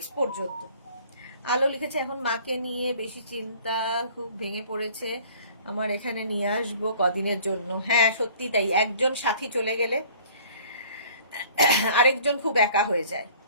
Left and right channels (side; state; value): both; inverted; correlation -0.51